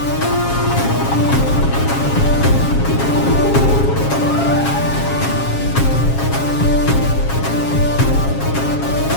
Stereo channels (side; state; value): right; late; 7.3 ms